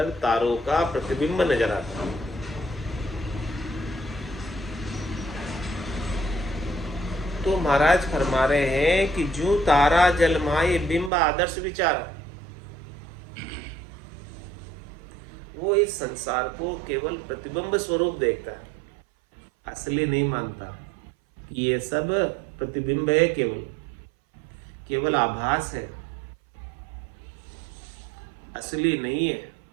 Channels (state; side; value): drops out; left; at 11.1 s